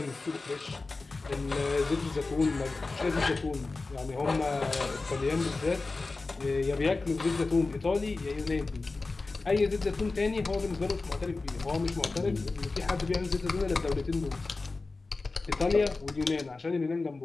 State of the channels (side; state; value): right; quieter; 3.6 dB